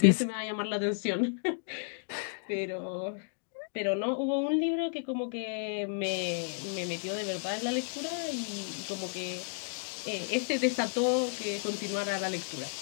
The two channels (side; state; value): right; silent; digital silence